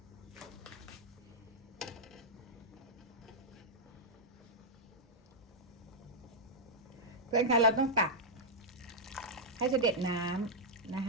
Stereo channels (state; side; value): normal; both; correlation -0.06